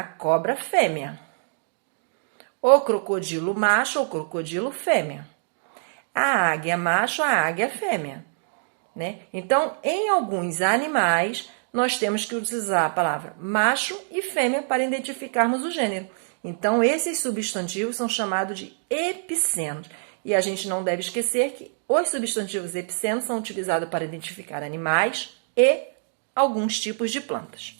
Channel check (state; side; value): silent; left; digital silence